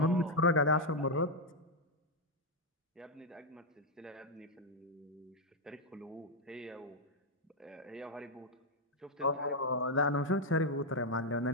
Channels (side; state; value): both; normal; correlation 0.01